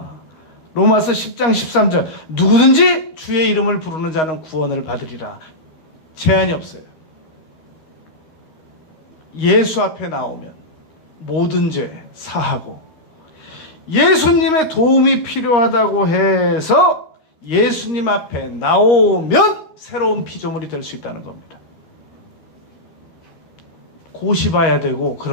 로마서 10장 13절 누구든지 주의 이름을 부르는 자는 구원을 받으리라. 제한이 없어요. 예수 앞에 나오면 모든 죄 사하고, 예수님의 도움이 필요하다고 해서 예수님 앞에 나오면 새로운 피조물이 될 수 있다는 겁니다. 고시봐야 되고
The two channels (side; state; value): right; late; 13 ms